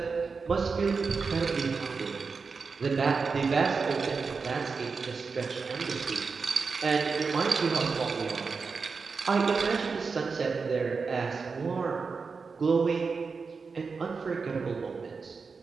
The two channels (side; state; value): left; quieter; 4.9 dB